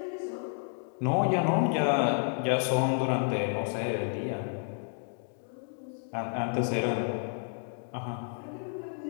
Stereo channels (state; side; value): silent; right; 57 dB below the other